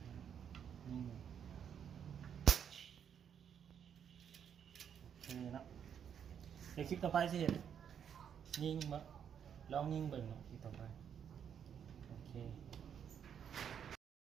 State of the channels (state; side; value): quieter; left; 8.3 dB